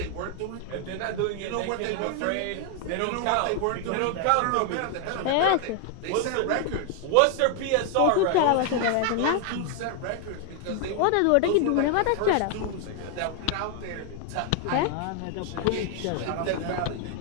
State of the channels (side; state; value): both; different; correlation 0.00